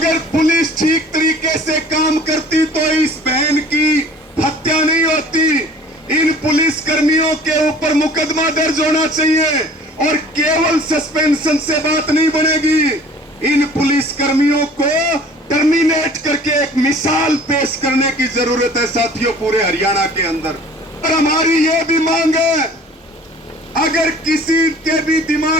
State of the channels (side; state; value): both; normal; correlation 0.48